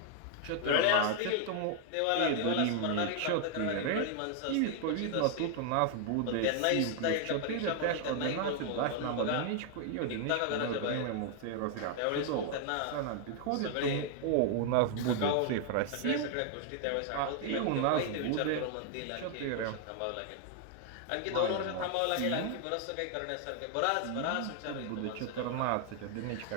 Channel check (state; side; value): different; both; correlation 0.00